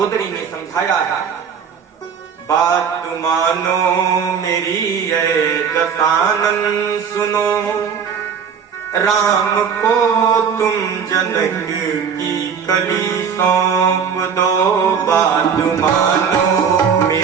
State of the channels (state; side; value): quieter; left; 6.9 dB